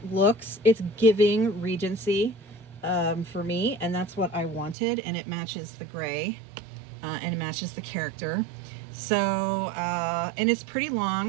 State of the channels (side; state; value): left; drops out; at 4.8 s